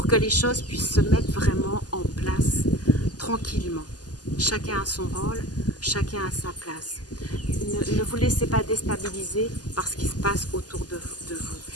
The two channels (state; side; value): late; right; 0.68 ms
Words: que les choses puissent se mettre vraiment en place tranquillement. Chacun a son rôle, chacun a sa place. Ne vous laissez pas déstabiliser par ce qui se passe autour de vous.